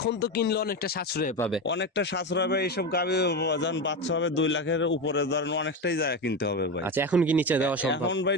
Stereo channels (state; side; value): normal; both; correlation 0.18